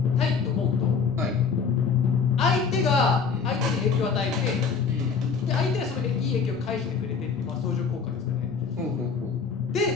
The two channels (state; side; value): quieter; right; 5.7 dB